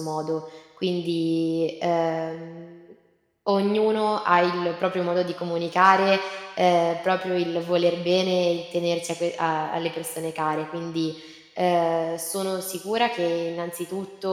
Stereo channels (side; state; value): both; identical; correlation 1.00